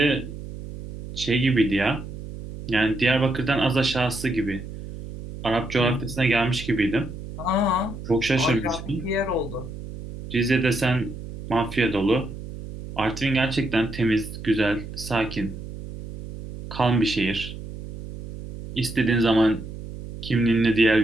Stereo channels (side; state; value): right; noise; hum, 11 dB below the sound